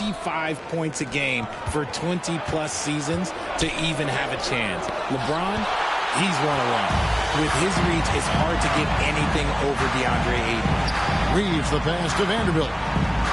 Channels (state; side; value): identical; both; correlation 1.00